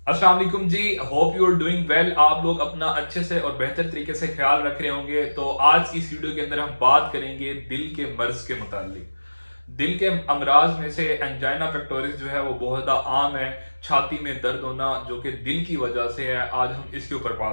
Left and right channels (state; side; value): inverted; both; correlation -1.00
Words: अस्सलाम वालेकुम जी। Hope you are doing well. आप लोग अपना अच्छे से और बेहतर तरीके से ख्याल रख रहे होंगे। तो आज की इस वीडियो के अंदर हम बात करेंगे दिल के मर्ज के मुतालिक। दिल के अमराज में से एंजाइना पेक्टोरिस जो है वो बहुत ज़्यादा आम है। छाती में दर्द होना जो कि दिल की वजह से है, आज हम इसके ऊपर